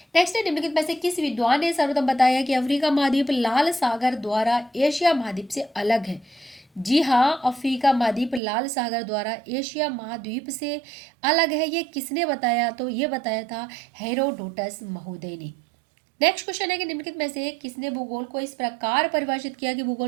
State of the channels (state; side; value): drops out; left; at 8.4 s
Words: नेक्स्ट है, निम्नलिखित में से किस विद्वान ने सर्वप्रथम बताया कि अफ्रीका महाद्वीप लाल सागर द्वारा एशिया महाद्वीप से अलग है? जी हाँ, अफ्रीका महाद्वीप लाल सागर द्वारा एशिया महाद्वीप से अलग है। ये किसने बताया? तो ये बताया था हेरोडोटस महोदय ने। नेक्स्ट क्वेश्चन है कि निम्नलिखित में से किसने भूगोल को इस प्रकार परिभाषित किया कि